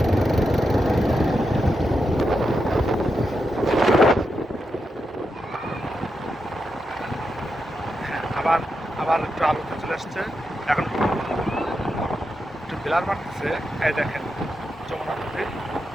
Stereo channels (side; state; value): both; normal; correlation 0.86